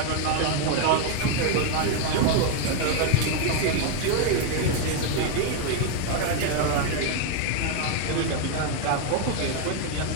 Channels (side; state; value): both; different; correlation 0.01